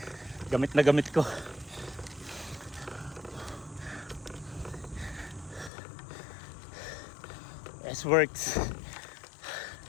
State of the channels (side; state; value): right; drops out; at 5.7 s